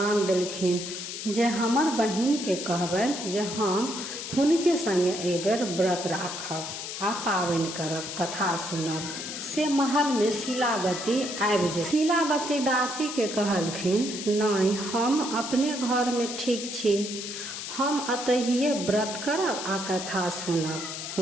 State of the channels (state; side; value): noise; left; hiss, 7 dB below the sound